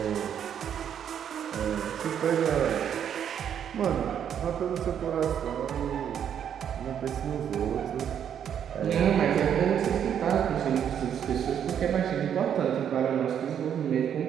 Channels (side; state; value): left; quieter; 8.9 dB